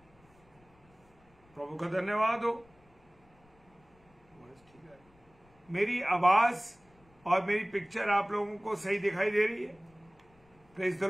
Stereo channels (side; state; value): left; noise; rumble, 30 dB below the sound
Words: प्रभु का धन्यवाद हो। मेरी आवाज और मेरी पिक्चर आप लोगों को सही दिखाई दे रही है? Praise the